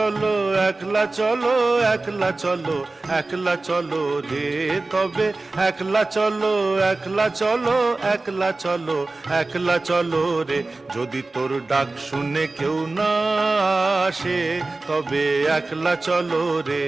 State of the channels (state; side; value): quieter; left; 3.3 dB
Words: একলা চলো, একলা চলো, একলা চলো রে। তবে একলা চলো, একলা চলো, একলা চলো, একলা চলো রে। যদি তোর ডাক শুনে কেউ না আসে তবে একলা চলো রে।